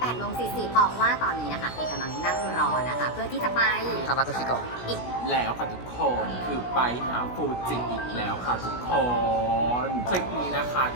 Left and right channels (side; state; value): right; late; 16 ms